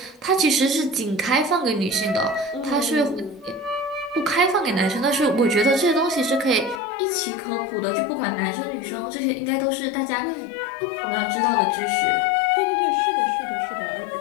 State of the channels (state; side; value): drops out; right; at 6.8 s